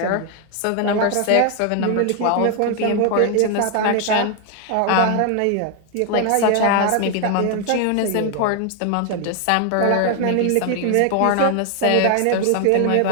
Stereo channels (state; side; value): different; both; correlation 0.00